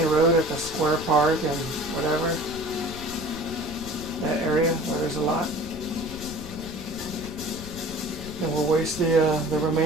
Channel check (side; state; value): left; noise; rumble, 14 dB below the sound